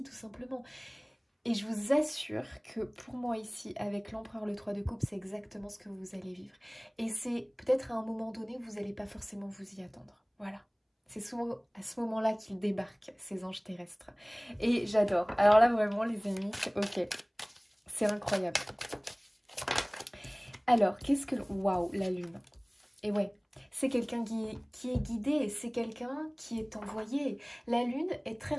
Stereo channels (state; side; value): identical; both; correlation 1.00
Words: tout simplement. Et je vous assure que pour moi ici, avec l'empereur le 3 de coupe, c'est exactement ce que vous allez vivre. Et c'est peut-être à un moment donné, vous n'allez pas forcément vous y attendre, voilà. C'est souvent à ce moment-là qu'ils débarquent, ces anges terrestres. Et j'adore. Alors là, vraiment, les amis, ok. C'est incroyable. Alors, qu'est-ce que... Waouh, la lune. Et ouais, c'est quelqu'un qui est guidé, c'est quelqu'un qui est envoyé. La lune est très